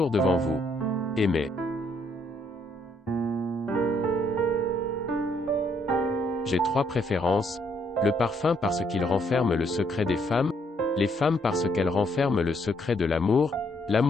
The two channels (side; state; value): both; normal; correlation 0.70